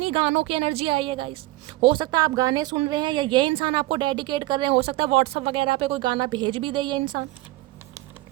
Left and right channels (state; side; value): quieter; left; 18.8 dB